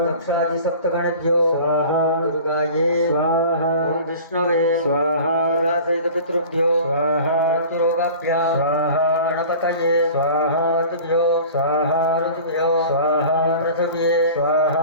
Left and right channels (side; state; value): both; inverted; correlation -0.41